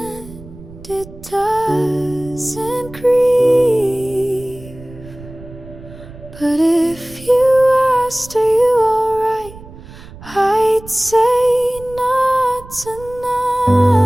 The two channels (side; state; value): right; noise; rumble, 18 dB below the sound